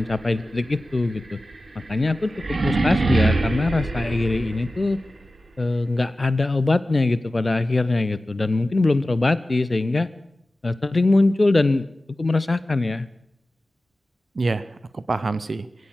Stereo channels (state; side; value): normal; both; correlation 0.95